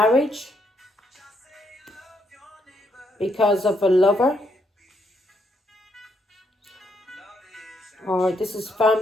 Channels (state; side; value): normal; both; correlation 0.75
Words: because of a lover. Or this is